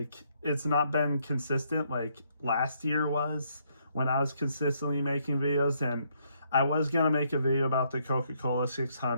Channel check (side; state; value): both; inverted; correlation -0.72